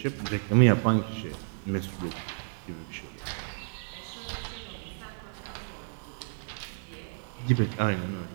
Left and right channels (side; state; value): left; silent; 57 dB below the other